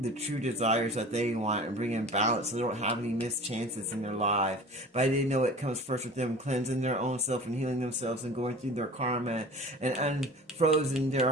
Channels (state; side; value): normal; both; correlation 0.40